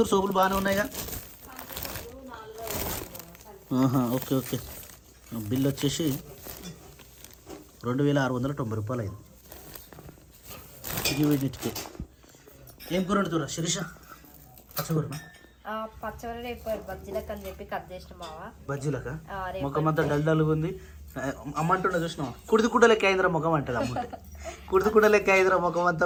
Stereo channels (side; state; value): both; identical; correlation 1.00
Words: సోపులు బాగానే ఉన్నాయిగా ఓకే ఓకే బిల్ వచ్చేసి 2690 రూపాయలు అయింది ఇది వీటికి ఏం కూర వండుతురా శిరీష పచ్చకూరనా పచ్చడి రేపు బజ్జీలకు అని చెప్పి కట్ చేసిన బావా బజ్జీలక ముఖం అంతా డల్గా ఉంది అమ్మంటుండే చూసినావా కుడిది లెక్క అయిందిరా ముఖం అంటది అమ్మ కుడిది లెక్క అయిందిరా ముఖం అంతా